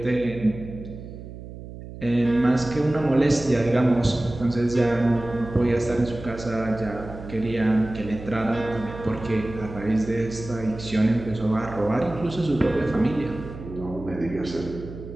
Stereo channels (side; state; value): right; noise; hum, 13 dB below the sound